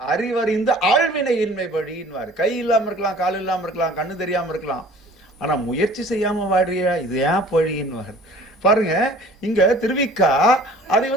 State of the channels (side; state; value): both; normal; correlation 0.48